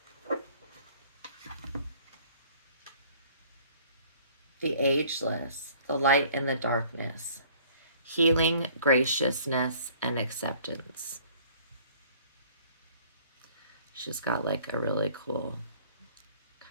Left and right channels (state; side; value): inverted; both; correlation -0.55